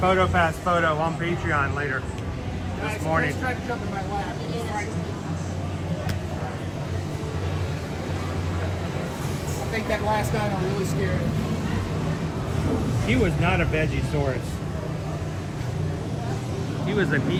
photo on Patreon later this morning. Tried to jump in my lap. I think that last dino really scared him. He was not a Vegisaurus. He was a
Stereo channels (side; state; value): both; identical; correlation 1.00